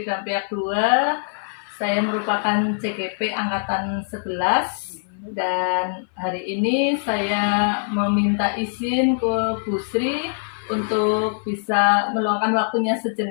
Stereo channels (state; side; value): silent; right; 57 dB below the other